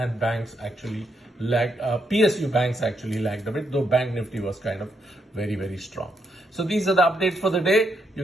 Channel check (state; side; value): normal; both; correlation 0.78